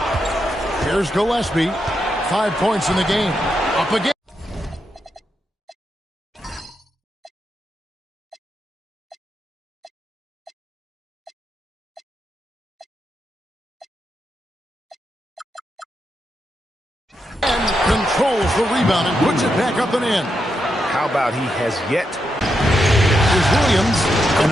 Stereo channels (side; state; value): both; normal; correlation 0.84